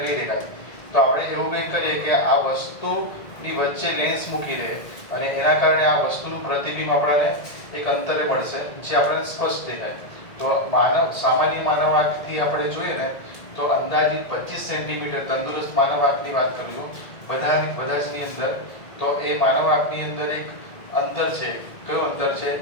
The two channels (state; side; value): late; right; 1.9 ms